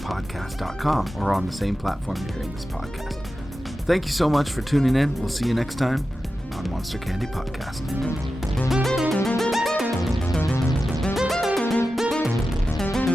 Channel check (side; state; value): both; normal; correlation 0.92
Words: or on the same platform you're hearing this podcast. Thank you so much for tuning in. We'll see you next time on Monster Candy Podcast.